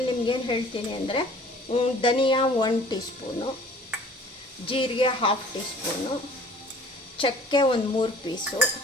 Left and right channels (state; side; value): normal; both; correlation 0.50